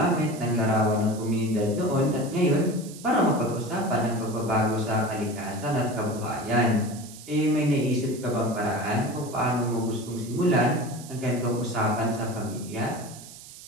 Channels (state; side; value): noise; right; hiss, 16 dB below the sound